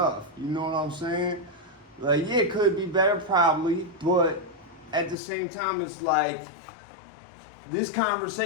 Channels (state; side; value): drops out; right; at 5.2 s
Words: You know what I'm saying? Yeah, it could be better probably, but at the same time, it's this